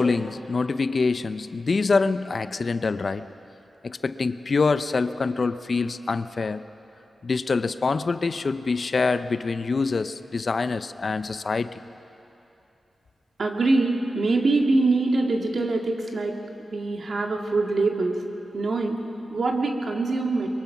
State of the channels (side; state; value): both; normal; correlation 0.90